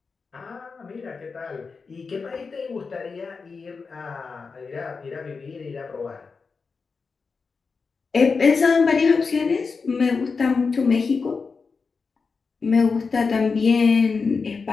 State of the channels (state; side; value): quieter; right; 4.8 dB